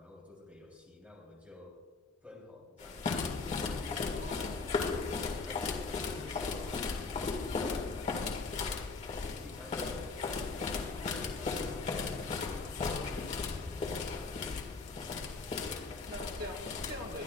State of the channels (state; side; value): quieter; right; 4.0 dB